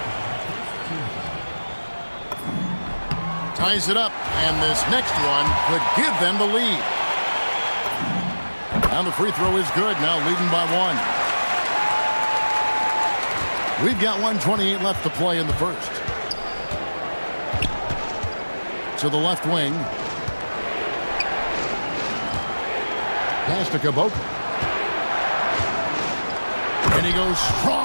Ties it up, and this next one could give them the lead. And the free throw is good, now leading by 1. We've got 1:28 left to play in the first. To the left wing. Pass to Caboclo. And he goes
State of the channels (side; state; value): both; inverted; correlation -1.00